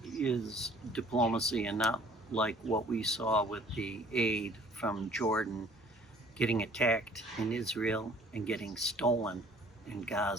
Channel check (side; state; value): both; normal; correlation 0.54